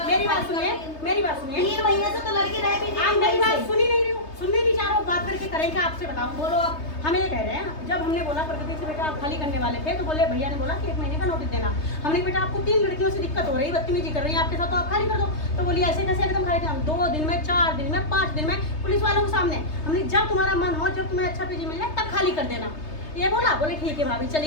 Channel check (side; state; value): right; late; 3.3 ms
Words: मेरी बात सुनिए, मेरी बात सुनिए। 3 महीने से तो लड़की रह भी नहीं। आप मेरी बात सुनी नहीं रही हो, सुनने नहीं चाह रहे हो, बात करके करेंगे आपसे। बताओ, बोलो आप। हम ये कह रहे हैं, जब हमने बोला प्रगति से बेटा आप खाली करने वाले थे तो बोले भैया ने बोला कि 1 महीने का नोटिस देना। हमने बेटा आपको 3 लड़कियों से दिक्कत हो रही है, बदतमीजी कर रही है आपके साथ, तो आप खाली कर दो। तो बोली ऐसे कैसे एकदम खाली कर? 2 दिन में, 4 दिन में, 5 दिन में पुलिस वालों के सामने। हमने जब तुम्हारा मन हो, जब तुम्हें अच्छा पीजी मिल जाए तब खाली कर देना। ये बोला, बोले ठीक है भाभी,